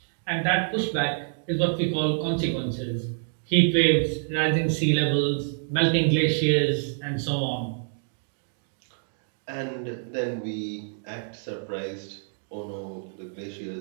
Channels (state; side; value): silent; left; digital silence